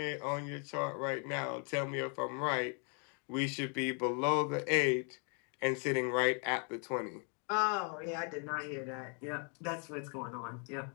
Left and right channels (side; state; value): right; quieter; 39.3 dB